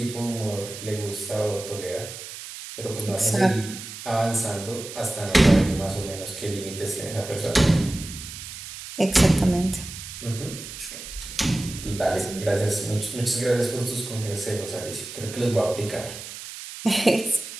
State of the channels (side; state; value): right; noise; hiss, 11 dB below the sound